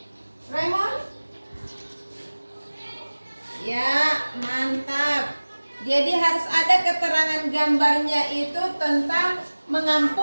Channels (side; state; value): both; inverted; correlation -1.00